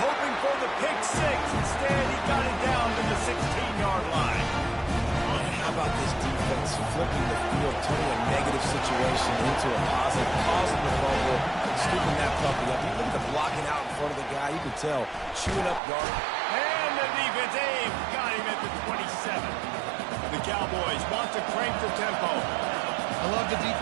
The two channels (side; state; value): left; drops out; at 15.8 s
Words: for the pick 6. Instead, he got it down to the 16-yard line. How about this defense flipping the field, turning a negative situation into a positive, causing the fumble, scooping that puppy up. You look at the blocking out in front of the guy, you can tell, chewing up yardage. And the defense, got him at the 27. The Cowboys want to crank the tempo. I love the